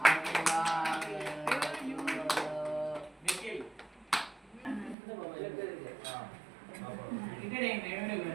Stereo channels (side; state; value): left; drops out; at 5.0 s